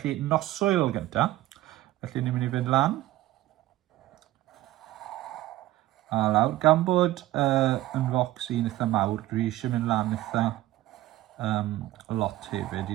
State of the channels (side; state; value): left; quieter; 16.0 dB